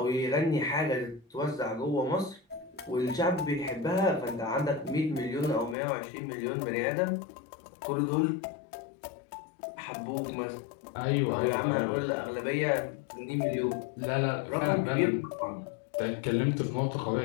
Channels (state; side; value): drops out; right; at 5.8 s